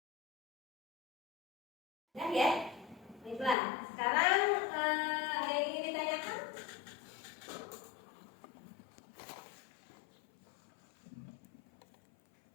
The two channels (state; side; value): drops out; right; at 3.6 s